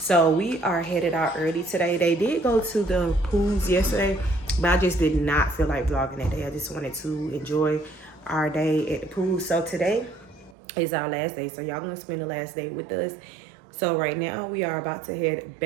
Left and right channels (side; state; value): left; drops out; at 10.6 s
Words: we are headed out early today. They did go to the pools yesterday, but I just did not feel like vlogging that day. I just wanted to enjoy our day at the pool. So today is our last day, so y'all gonna spend the last day with us. So right now we are about to head